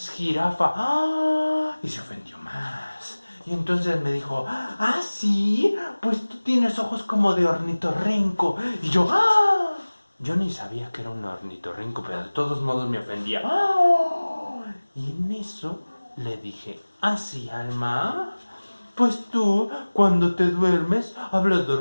jirafa. ¡Ah! Y se ofendió más. Y entonces me dijo, ah, sí, pues tú tienes ojos como de ornitorrinco. Y yo, ¡ah! Yo ni sabía que era un ornitorrinco, pero de todos modos me ofendía. ¡Ah! Y en eso le dije, ah, sí, Alma, pues tú, cuando te duermes, hablas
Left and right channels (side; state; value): both; inverted; correlation -1.00